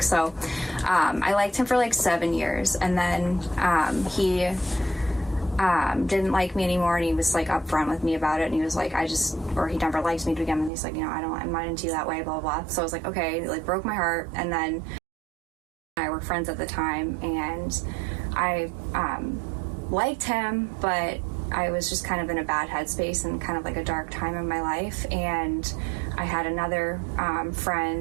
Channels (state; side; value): drops out; left; at 10.7 s